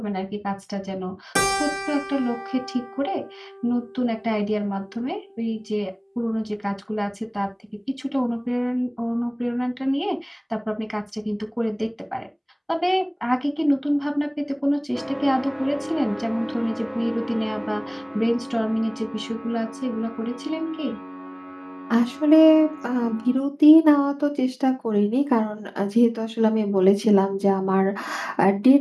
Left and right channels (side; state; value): both; identical; correlation 1.00